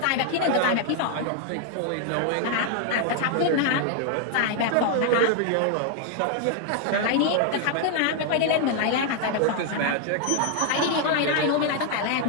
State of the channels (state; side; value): different; both; correlation 0.00